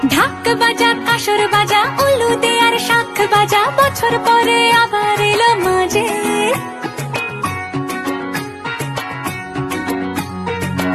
ঢাক বাজা কাসর বাজা উলু দে আর শাখ বাজা, বছর পরে আবার এলো মাঝে।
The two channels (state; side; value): identical; both; correlation 1.00